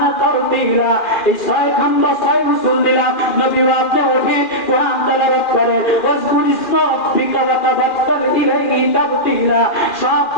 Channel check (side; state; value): right; late; 2.4 ms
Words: তারতিলা। এই 6 খণ্ড 6 উসুল দিলাম, নবী ওয়াক্তে ওঠে কোরআন তেলাওয়াত করে, ওয়াজকুর ইসমা রাব্বিকা ওয়া তাবাক্কাল ইলাইহি তাবতিলা। সব